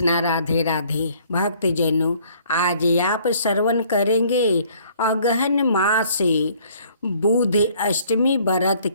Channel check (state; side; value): inverted; both; correlation -0.60